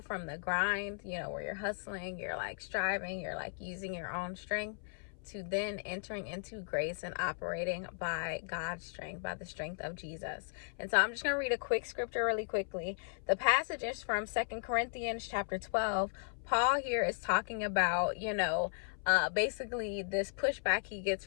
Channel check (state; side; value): silent; right; 54 dB below the other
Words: from the grind, where you're hustling, you're like striving, you're like using your own strength, to then entering into grace and operating by God's strength, by the strength of Jesus. And so I'm just going to read a quick scripture really quickly. The passage is from 2 Corinthians chapter 12. Paul here is talking about, basically this pushback he gets